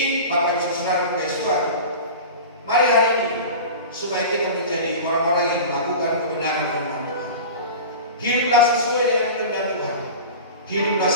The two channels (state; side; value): inverted; both; correlation -0.33